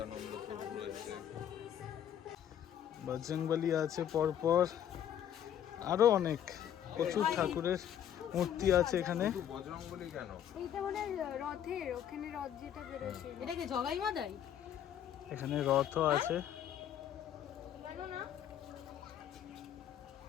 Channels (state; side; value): quieter; right; 10.0 dB